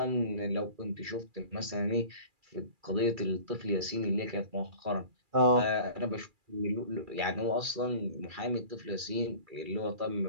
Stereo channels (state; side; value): late; left; 2.3 ms